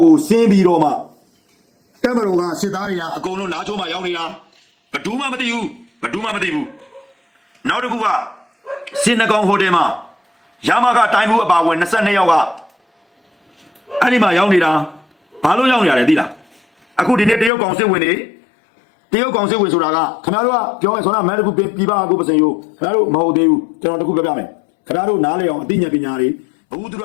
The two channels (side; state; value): right; drops out; at 17.5 s